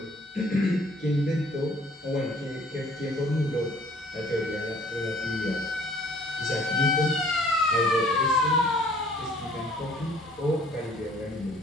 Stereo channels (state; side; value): normal; both; correlation 0.56